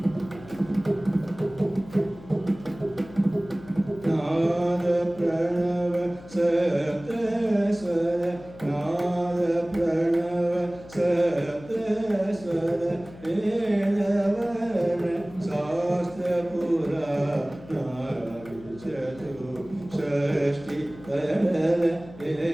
ನಾದ ಪ್ರಣವ ಸಪ್ತ ಸ್ವರ ನಾದ ಪ್ರಣವ ಸಪ್ತ ಸ್ವರ ವೇದವರ್ಣ ಶಾಸ್ತ್ರ ಪುರಾಣ ಚತು ಷಷ್ಠಿ ಕಡಲ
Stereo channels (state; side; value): noise; left; hum, 19 dB below the sound